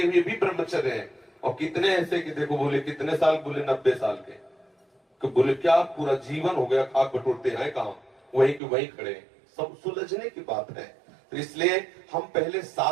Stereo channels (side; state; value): left; drops out; at 8.6 s